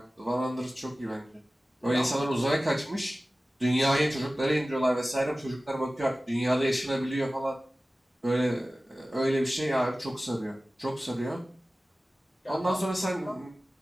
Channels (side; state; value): both; normal; correlation 0.97